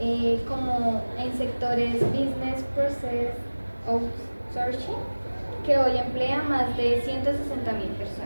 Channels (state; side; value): inverted; both; correlation -1.00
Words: como en sectores business process outsourcing, que hoy emplea más de 160.000